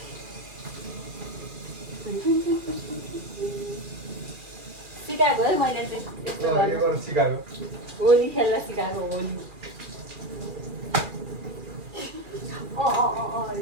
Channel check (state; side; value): late; left; 2.4 ms